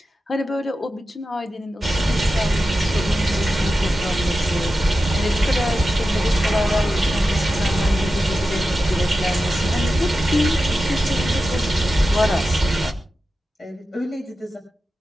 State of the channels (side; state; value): both; normal; correlation 0.92